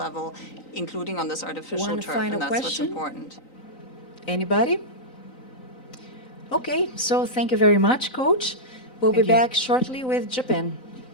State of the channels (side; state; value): right; late; 3.9 ms